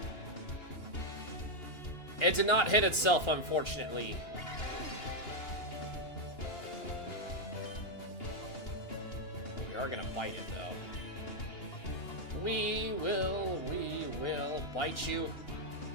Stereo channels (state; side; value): late; right; 2.9 ms